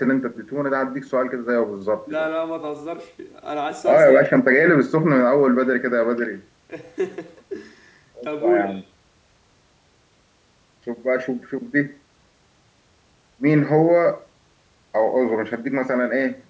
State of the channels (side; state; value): both; identical; correlation 1.00